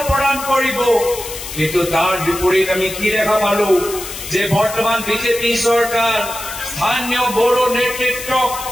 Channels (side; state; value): left; noise; hiss, 10 dB below the sound